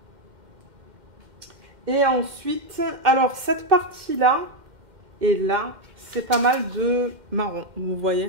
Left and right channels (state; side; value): late; left; 2.1 ms